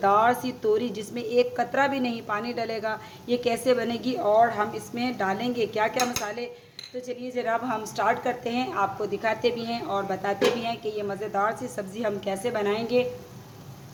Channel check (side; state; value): both; identical; correlation 1.00